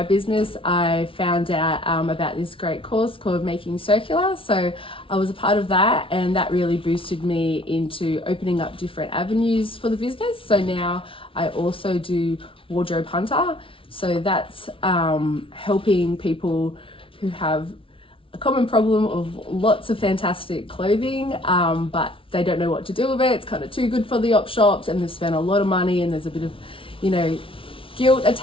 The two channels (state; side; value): late; right; 0.25 ms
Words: business, I found out about this great course called Making Circular. So I was a part of that, and that really boosted me into opening up different avenues for the business. So now I also do Wardrobe Hunter. So that's helping people who have a common problem of lots of fantastic clothing, but they don't know what to do with it. It's kind of too good for the op shops, and they've spent a lot of money, and there's a bit of, guilt